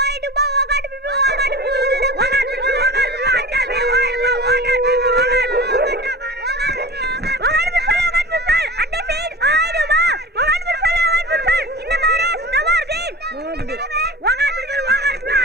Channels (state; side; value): normal; both; correlation 0.35